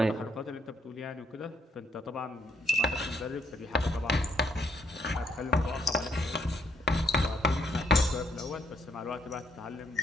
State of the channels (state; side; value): normal; both; correlation 0.70